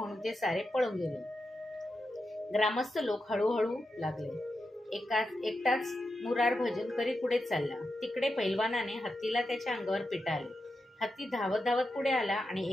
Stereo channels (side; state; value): both; normal; correlation 0.88